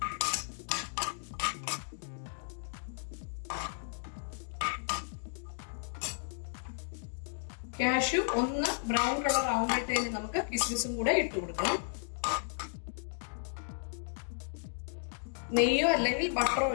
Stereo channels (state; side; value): silent; right; digital silence